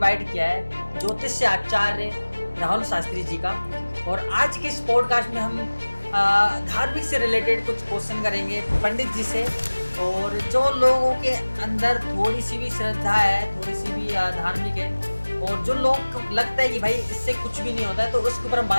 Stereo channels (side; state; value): both; inverted; correlation -1.00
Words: किया है ज्योतिष से आचार्य राहुल शास्त्री जी का। और आज के इस पॉडकास्ट में हम धार्मिक से रिलेटेड कुछ क्वेश्चन करेंगे पंडित जी से। और जो लोगों के अंदर थोड़ी सी भी श्रद्धा है, थोड़ी सी भी धार्मिक है, और जो लोग को लगता है कि भाई इससे कुछ भी नहीं होता है, तो उसके ऊपर हम